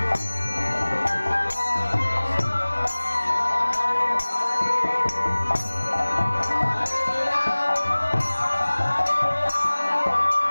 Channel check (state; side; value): inverted; both; correlation -1.00